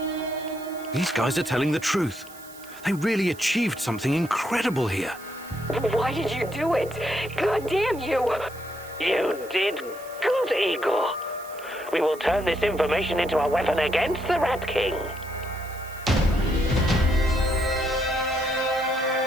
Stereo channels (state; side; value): noise; right; hiss, 20 dB below the sound